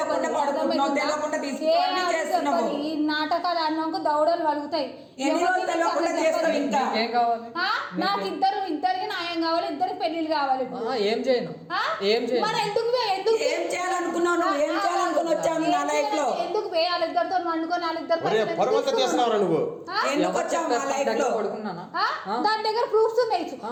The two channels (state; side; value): identical; both; correlation 1.00